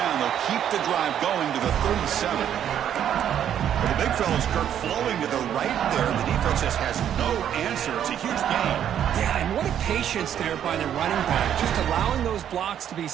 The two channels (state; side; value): quieter; left; 9.8 dB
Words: they'll keep the drive going to the 37. Well, the big fella's Kirk flowing to the right there. The defense just has no answer. It's a huge gain. Yeah, and what a patience there by the running back. Just allowing those blocks to be